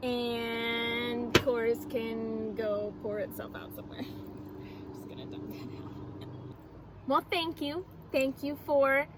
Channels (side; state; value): both; identical; correlation 1.00